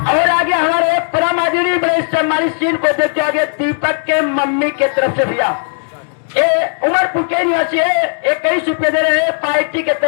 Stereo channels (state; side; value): silent; right; digital silence